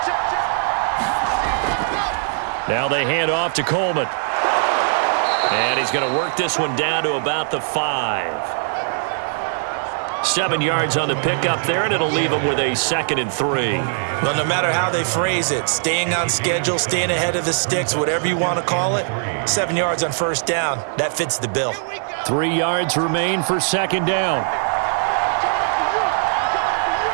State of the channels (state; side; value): silent; left; digital silence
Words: Now they hand off to Coleman. And he's going to work this one down to about the 5. 7 yards on the pickup there, and it'll leave him with a 2nd and 3. Well, no matter how they phrase it, staying on schedule, staying ahead of the sticks, whatever you want to call it, 7 yards on 1st down, that fits the bill. 3 yards remain for 2nd down.